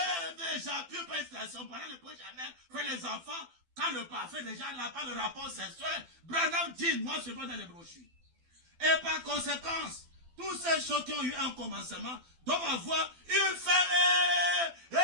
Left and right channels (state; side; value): late; left; 12 ms